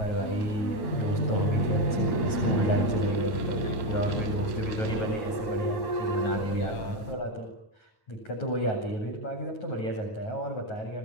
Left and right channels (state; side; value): late; right; 9.4 ms